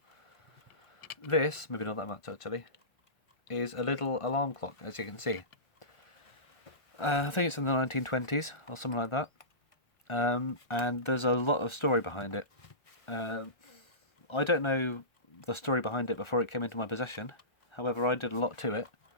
this, maybe not that much actually, is a little alarm clock, as you can see. I think it's in the 1920s or something like that, and there's a lot of story behind it. I don't know the story behind it before it came into my possession, however I did a lot to it,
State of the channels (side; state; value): right; late; 1.4 ms